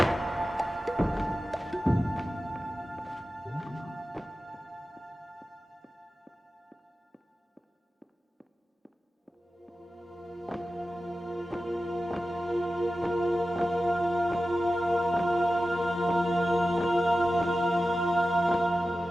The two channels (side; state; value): both; normal; correlation 0.94